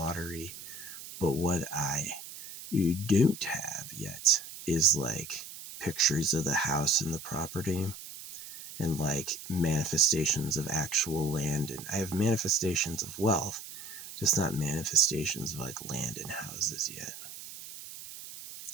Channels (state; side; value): noise; right; hiss, 13 dB below the sound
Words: But what I don't have yet is like pictures of the house and the property, and like manifestations of actual land. And I have manifestations of wealth, just not manifestations of like land and houses yet.